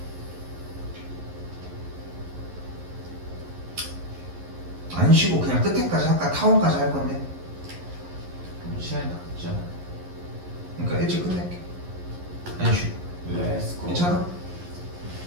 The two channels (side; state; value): left; late; 11 ms